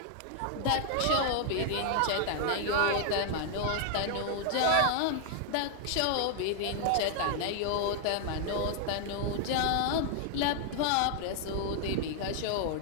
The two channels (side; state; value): both; different; correlation 0.00